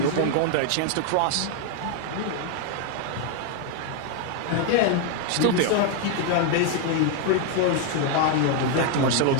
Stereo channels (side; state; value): both; different; correlation 0.00